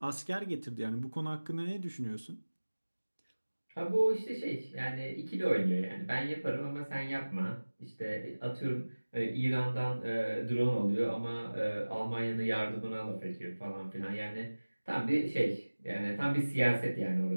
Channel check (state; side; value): inverted; both; correlation -1.00